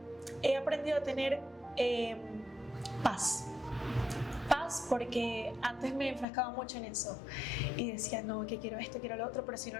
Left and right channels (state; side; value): drops out; right; at 6.2 s